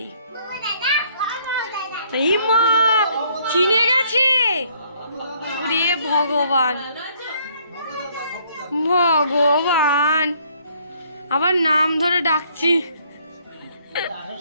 ইমা চিনে গেছে, ওরে ভগবান ভগবান, আবার নাম ধরে ডাকছি।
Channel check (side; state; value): both; inverted; correlation -0.65